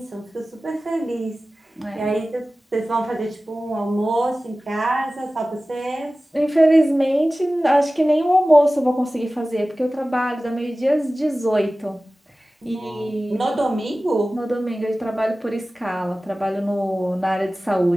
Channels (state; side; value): normal; both; correlation 0.97